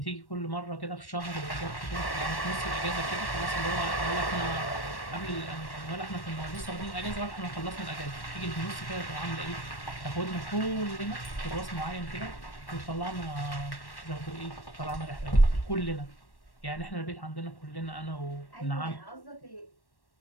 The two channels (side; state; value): right; late; 1.1 ms